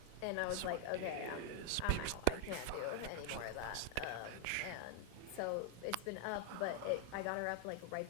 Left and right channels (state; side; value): different; both; correlation 0.00